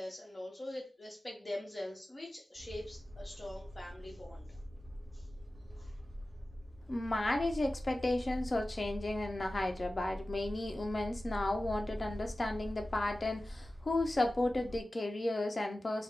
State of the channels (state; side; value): normal; both; correlation 0.96